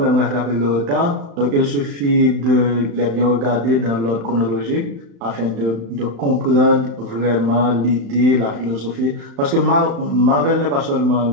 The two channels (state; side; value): late; left; 35 ms